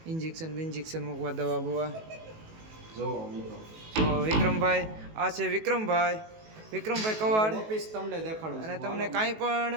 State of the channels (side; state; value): left; late; 18 ms